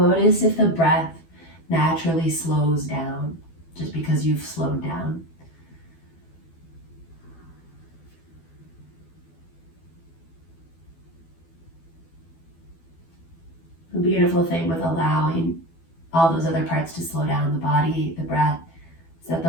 if the breath naturally slows down just because you've slowed down. The beautiful thing with allowing all those other parts to slow down, the body, the breath, is that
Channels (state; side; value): late; right; 12 ms